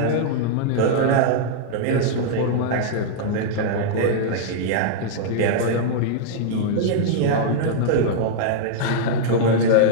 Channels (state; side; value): different; both; correlation -0.01